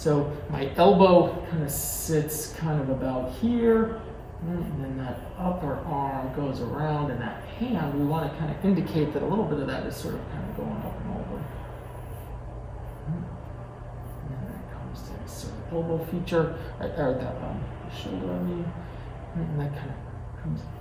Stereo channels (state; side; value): identical; both; correlation 1.00